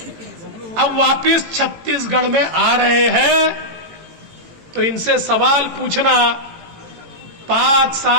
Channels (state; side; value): late; left; 18 ms